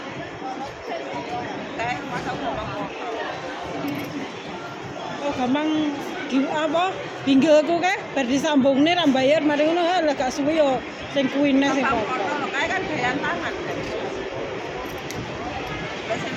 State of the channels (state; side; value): identical; both; correlation 1.00